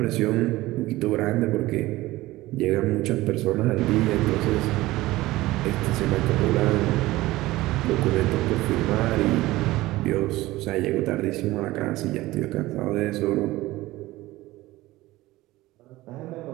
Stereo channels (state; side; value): quieter; left; 18.1 dB